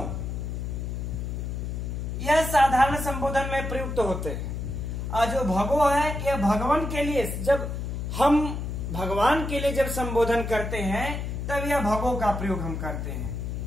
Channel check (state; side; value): noise; left; hum, 4 dB below the sound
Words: यह साधारण संबोधन में प्रयुक्त होते हैं। और जो भगो है यह भगवान के लिए, जब हम भगवान के लिए जब संबोधन करते हैं तब यह भगो का प्रयोग हम करते हैं।